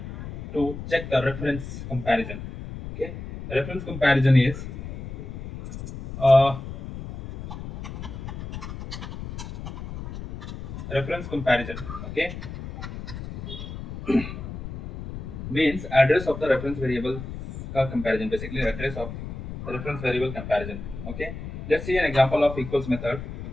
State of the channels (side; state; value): left; noise; rumble, 9 dB below the sound